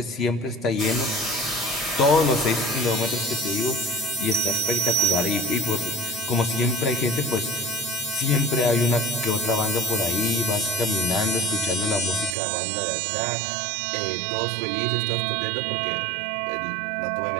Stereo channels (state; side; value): drops out; left; at 12.4 s